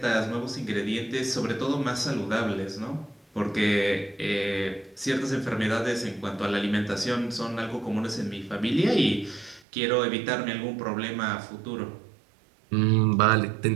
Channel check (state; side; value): drops out; left; at 9.6 s